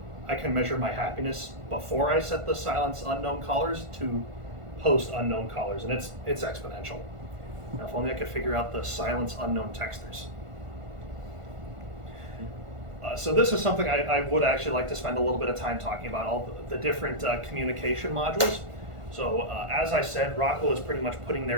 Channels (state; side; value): late; left; 1.5 ms